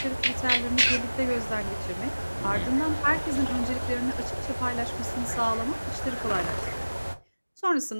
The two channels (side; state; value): both; inverted; correlation -1.00